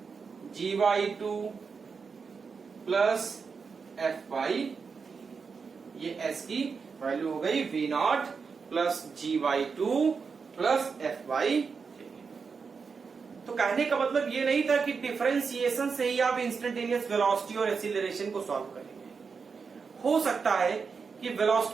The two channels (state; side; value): quieter; left; 5.4 dB